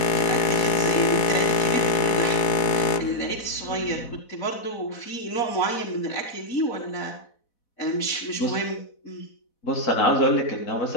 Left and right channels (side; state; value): right; late; 4.1 ms